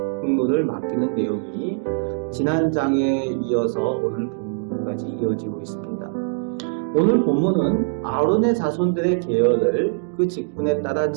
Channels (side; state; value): left; silent; digital silence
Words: 맡기는 내용이 지난 장에 이어서 오늘 본문까지 이어지고 있습니다. 오늘 본문은 아론의 자손들의 계열을 그 직분에 따라